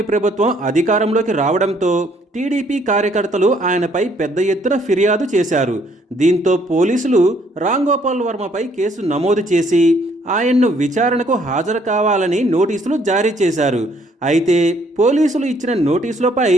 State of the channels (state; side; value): normal; both; correlation 0.65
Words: ప్రభుత్వం అధికారంలోకి రావడంతో టీడీపీ కార్యకర్తలు ఆయనపై పెద్ద ఎత్తున ఫిర్యాదు చేశారు. దీంతో పోలీసులు రామ్ గోపాల్ వర్మపై కేసు నమోదు చేసి ఆయన్ను విచారణకు హాజరు కావాలని నోటీసులు జారీ చేశారు. అయితే పోలీసులు ఇచ్చిన నోటీసులపై